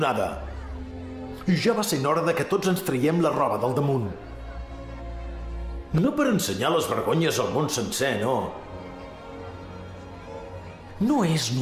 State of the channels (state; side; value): identical; both; correlation 1.00